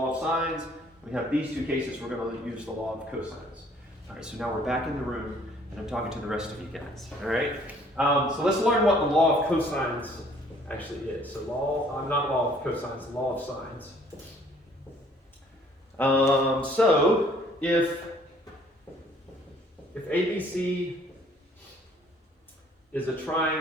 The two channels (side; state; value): both; normal; correlation 0.59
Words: of sines. We have these 2 cases, we're going to use the law of cosines. All right, so now we're back in the room, and I'm talking to the rest of you guys. All right, so let's learn what the law of cosines actually is. So not law of cosines, law of sines. So if ABC is a